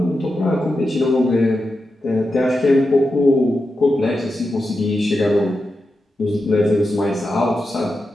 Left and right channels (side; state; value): both; normal; correlation 0.89